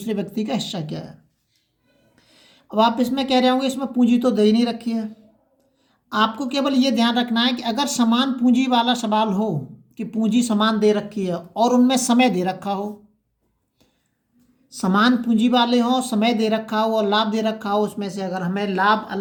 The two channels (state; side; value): identical; both; correlation 1.00